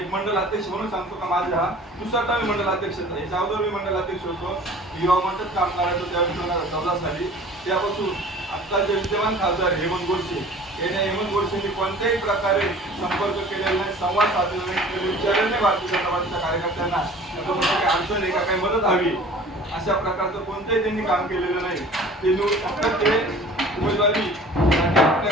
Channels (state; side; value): normal; both; correlation 0.45